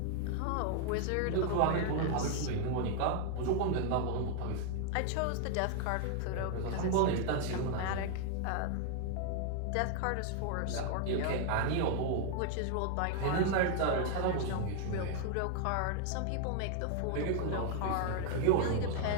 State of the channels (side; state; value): both; different; correlation 0.00